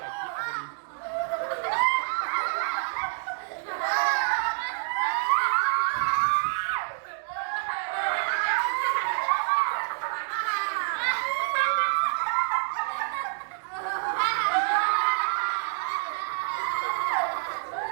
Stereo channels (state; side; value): silent; left; digital silence